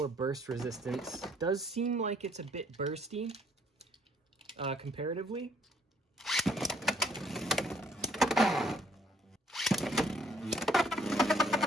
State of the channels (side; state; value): both; normal; correlation 0.64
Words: burst resistance. Does seem like it's a bit bursty, comparatively.